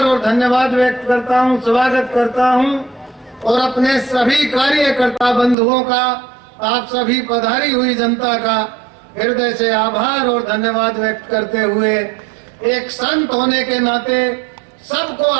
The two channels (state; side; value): drops out; left; at 5.6 s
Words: और धन्यवाद व्यक्त करता हूँ, स्वागत करता हूँ। और अपने सभी कार्यकर्ता बंधुओं का, आप सभी पधारी हुई जनता का हृदय से आभार और धन्यवाद व्यक्त करते हुए एक संत होने के नाते सबको